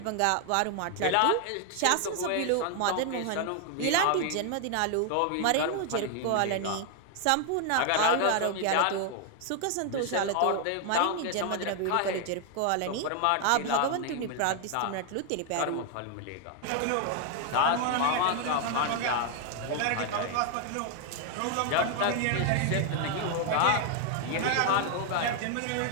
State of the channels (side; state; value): both; different; correlation 0.00